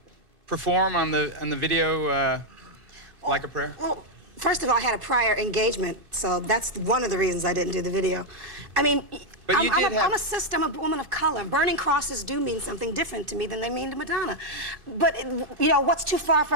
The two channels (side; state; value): left; late; 2.6 ms